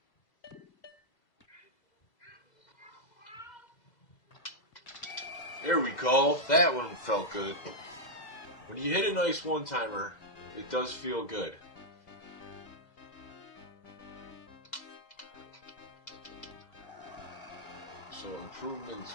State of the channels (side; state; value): right; late; 2.0 ms